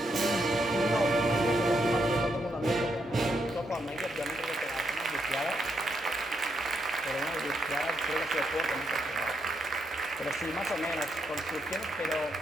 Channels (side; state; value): both; normal; correlation 0.79